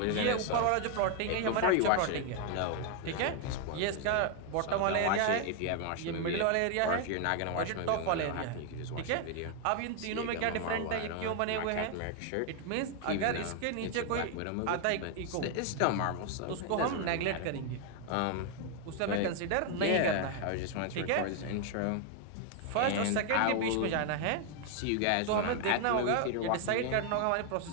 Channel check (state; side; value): different; both; correlation 0.00